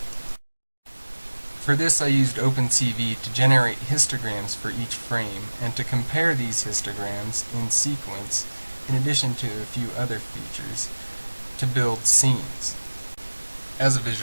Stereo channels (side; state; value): both; inverted; correlation -1.00